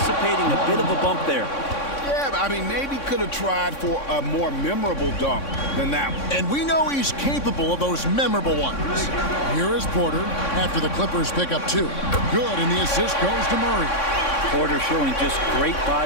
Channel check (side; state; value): right; late; 3.6 ms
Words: a bit of a bump there. Yeah, I mean, maybe could have tried for a more memorable dunk than that one. And we know he's capable of those memorable ones. Here is Porter after the Clippers pick up 2. Good, and the assist goes to Murray. Porter showing just great